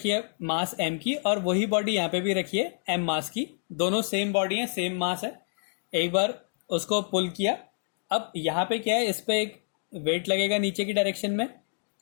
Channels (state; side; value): silent; right; digital silence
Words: है मास m की, और वही बॉडी यहाँ पे भी रखी है m मास की। दोनों सेम बॉडी है, सेम मास है। एक बार उसको पुल किया। अब यहाँ पे क्या है, इस पे एक वेट लगेगा नीचे की डायरेक्शन में